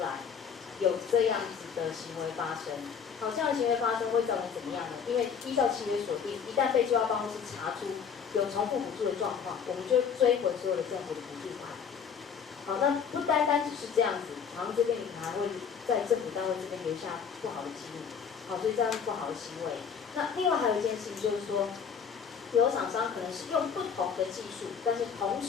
来有这样子的行为发生。好，这样的行为发生会造成怎么样呢？因为依照契约所定，一旦被就要办公室查出有重复补助的状况，我们就追回所有的政府的补助款。好，那不单单只是这样子，好像这边你还会在政府单位这边留下不好的记录。好，所以这样是不好的行为。那另外还有一件事情就是说，有厂商可能是用不同的技术，但是同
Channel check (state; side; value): quieter; right; 6.8 dB